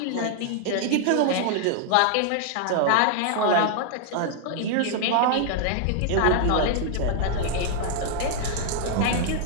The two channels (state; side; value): different; both; correlation 0.00